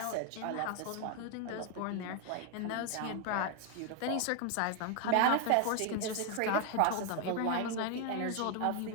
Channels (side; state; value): both; different; correlation 0.01